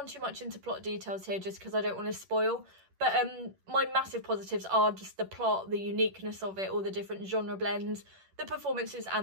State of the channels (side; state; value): left; late; 10 ms